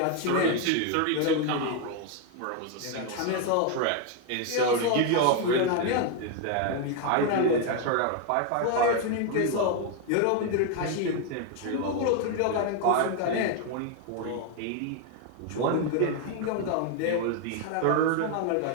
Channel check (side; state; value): both; different; correlation 0.01